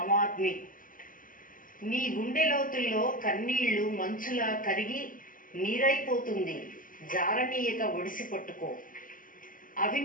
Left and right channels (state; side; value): late; right; 0.40 ms